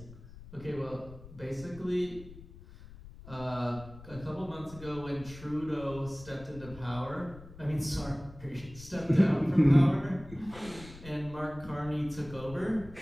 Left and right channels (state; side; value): noise; left; rumble, 17 dB below the sound